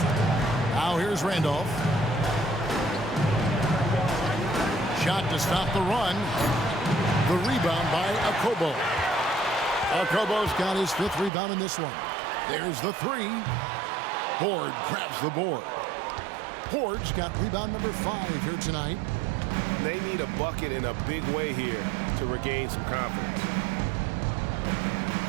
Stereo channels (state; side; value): drops out; left; at 11.3 s